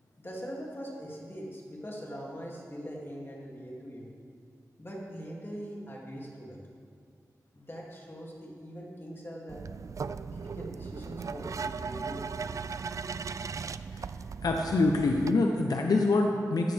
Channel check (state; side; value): normal; both; correlation 0.81